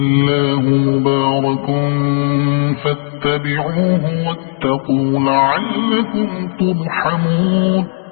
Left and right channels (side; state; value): right; silent; digital silence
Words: مبارك فاتبعوه واتقوا لعلكم ترحمون